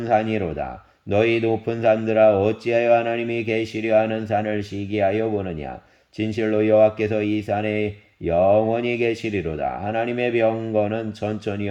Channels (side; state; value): both; identical; correlation 1.00